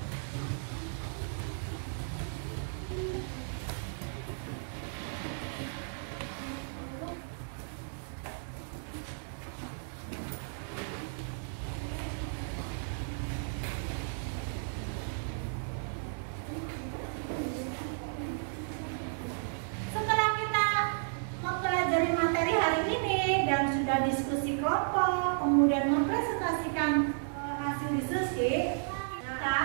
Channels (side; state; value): left; silent; 55 dB below the other